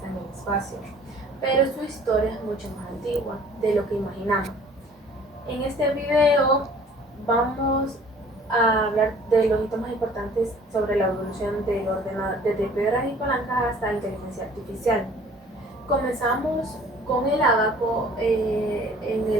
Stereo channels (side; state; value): both; normal; correlation 0.51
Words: en el espacio. Pero su historia es mucho más antigua de lo que imaginamos. En este video vamos a hablar de los hitos más importantes sobre la evolución del ordenador, desde piedras y palancas hasta inteligencia artificial. Comenzamos con el ábaco en